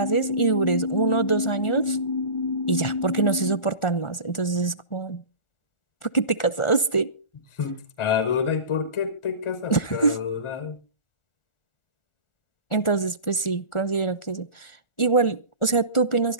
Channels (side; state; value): right; late; 1.4 ms